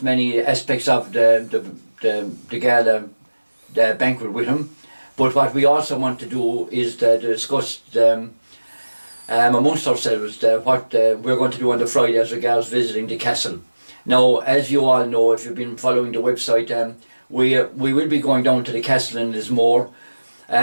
many aspects of the gala, the banquet with him, but what we also want to do is to discuss amongst ourselves what we're going to do on the Friday as regards visiting the castle. Now, as you all know, if you've been following the website, we will be going down to the castle in Lismore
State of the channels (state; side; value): inverted; both; correlation -1.00